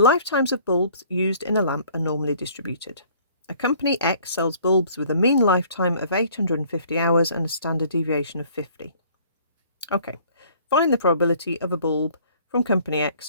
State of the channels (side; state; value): both; inverted; correlation -0.56